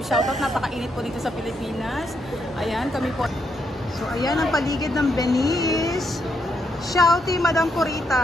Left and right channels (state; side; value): normal; both; correlation 0.78